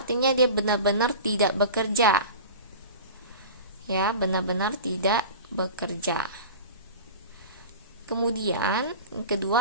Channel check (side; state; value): both; inverted; correlation -0.33